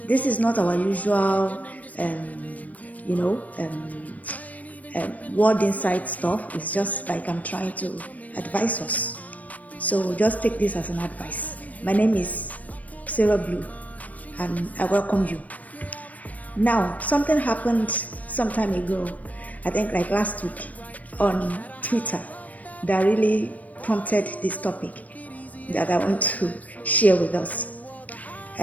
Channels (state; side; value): late; right; 0.071 ms